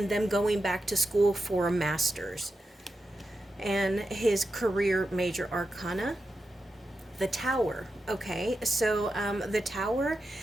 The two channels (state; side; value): normal; both; correlation 0.90